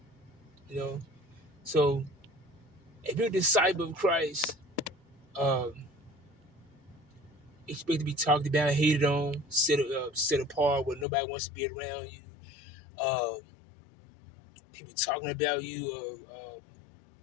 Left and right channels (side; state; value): right; drops out; at 11.1 s